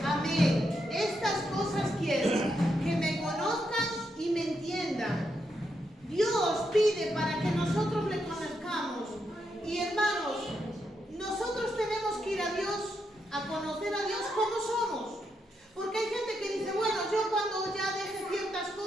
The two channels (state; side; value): normal; both; correlation 0.82